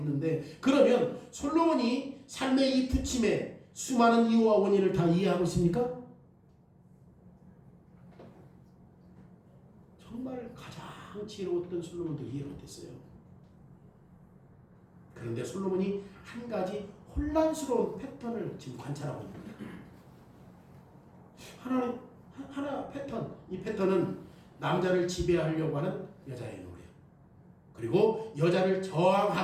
그러면 솔로몬이 삶의 이 부침에 수많은 이유와 원인을 다 이해하고 있습니까? 정말 가장 지혜로웠던 솔로몬도 이해를 못했어요. 그런데 솔로몬이 한 가지 혼란스러운 패턴을 지금 관찰하고 있는 거예요. 하나 패턴, 이 패턴은 남자를 지배하려고 하는 여자의 노래, 그리고 여자를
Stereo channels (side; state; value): both; identical; correlation 1.00